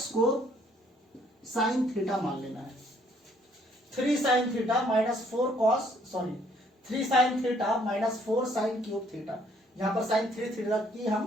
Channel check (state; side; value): normal; both; correlation 0.64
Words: को साइन थीटा मान लेना है। 3 sine theta minus 3 sine theta minus 4 sine cube theta. यहां पर साइन 3 थीटा की